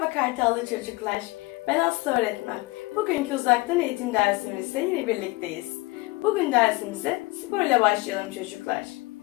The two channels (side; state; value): right; quieter; 22.7 dB